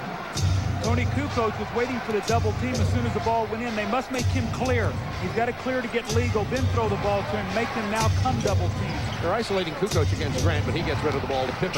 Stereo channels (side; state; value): both; identical; correlation 1.00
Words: Tony Kukoc was waiting for the double team as soon as the ball went in. They must make him clear. He's got to clear to get legal, then throw the ball to him, make them now come double team. They're isolating Kukoc against Grant, but he gets rid of the ball to